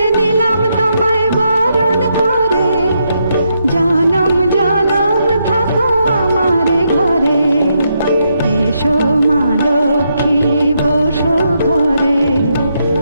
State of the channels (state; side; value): inverted; both; correlation -0.79